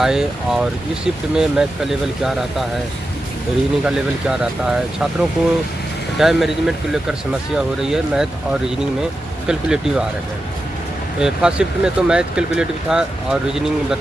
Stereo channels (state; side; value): normal; both; correlation 0.90